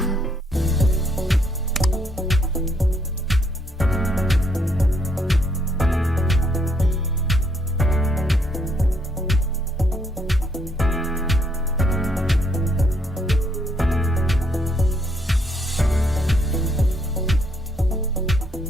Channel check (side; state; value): both; normal; correlation 0.71